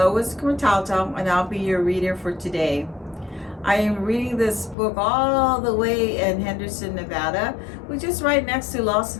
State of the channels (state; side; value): drops out; right; at 4.8 s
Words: Quintalto and I'll be your reader for today. I am reading this book all the way in Henderson, Nevada, which is right next to Las